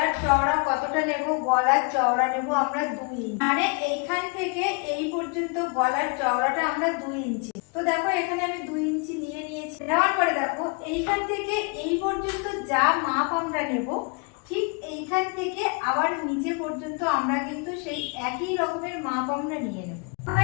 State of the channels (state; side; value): quieter; right; 32.8 dB